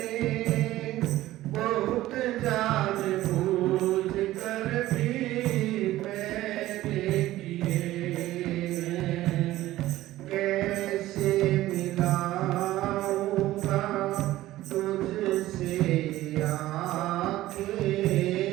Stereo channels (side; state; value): left; quieter; 15.7 dB